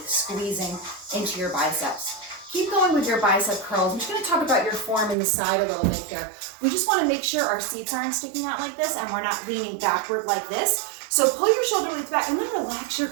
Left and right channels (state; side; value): drops out; left; at 5.2 s